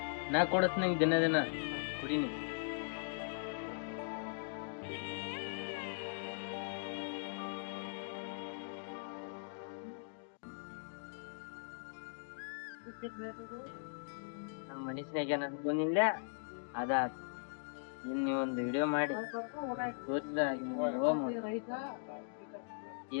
ನಾ ಕೊಡತ್ ನಂಗೆ ದಿನ ದಿನ ಕುಡಿ ನೀ. ನಮ್ಮ ಮನುಷ್ಯನಾಗ ಏನಂತ ಬಂದಿಲ್ಲ ಅದ ಒಂದು ವಿಡಿಯೋ ಮಾಡಿ ತೋರಿಸಿದ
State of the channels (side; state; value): right; silent; digital silence